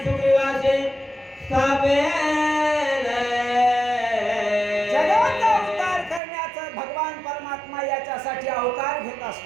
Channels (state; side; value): drops out; left; at 6.2 s